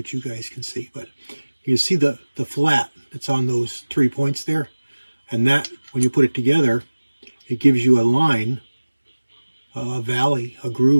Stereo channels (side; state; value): both; inverted; correlation -1.00